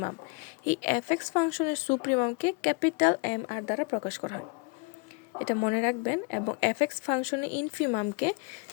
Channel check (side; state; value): right; quieter; 32.5 dB